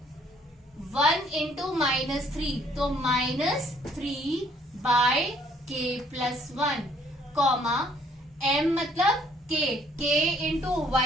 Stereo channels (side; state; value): both; normal; correlation 0.63